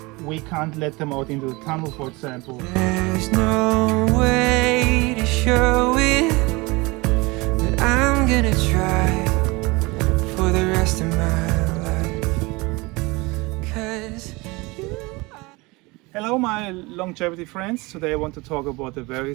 we can't let them out into the tunnel, for example. There's no way to show it, but I'm gonna try for the rest of my life. 'Cause Hello my longevity friends, today I want to talk about a very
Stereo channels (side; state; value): left; quieter; 24.3 dB